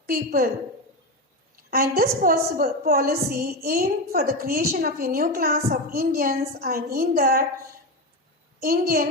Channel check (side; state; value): both; normal; correlation 0.16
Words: people. And this policy aimed for the creation of a new class of Indians, and in that